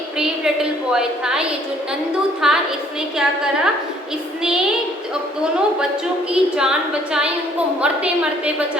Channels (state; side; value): normal; both; correlation 0.61